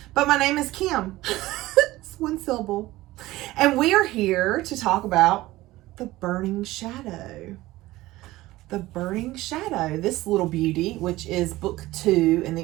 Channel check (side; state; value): left; quieter; 17.7 dB